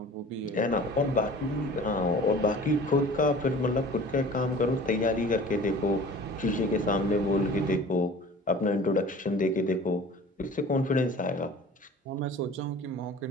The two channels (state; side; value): normal; both; correlation 0.43